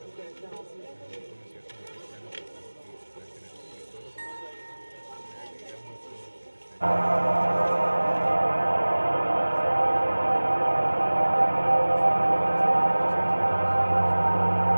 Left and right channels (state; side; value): inverted; both; correlation -1.00